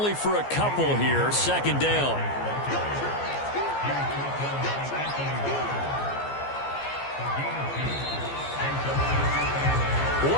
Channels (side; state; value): right; late; 14 ms